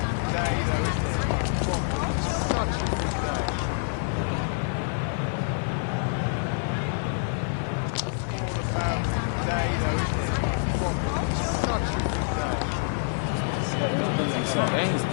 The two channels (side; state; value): right; silent; 60 dB below the other